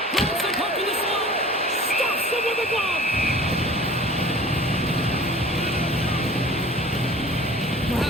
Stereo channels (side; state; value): both; normal; correlation 0.44